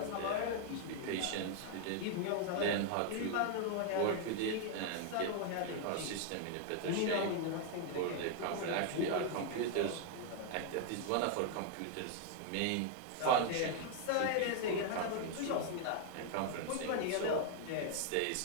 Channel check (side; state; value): both; different; correlation 0.00